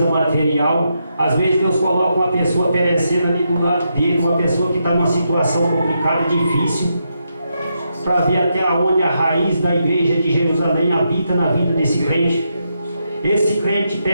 material. Às vezes Deus coloca uma pessoa perecendo ali do lado dele, uma pessoa que está numa situação complicada, difícil, para ver até onde a raiz da igreja de Jerusalém habita na vida desse crente. Esse crente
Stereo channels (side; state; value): both; inverted; correlation -0.82